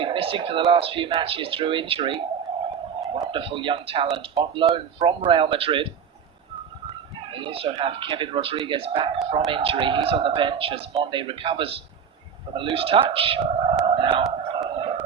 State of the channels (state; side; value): quieter; left; 7.3 dB